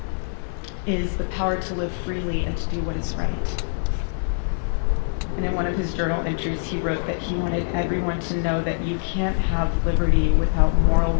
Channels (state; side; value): silent; right; digital silence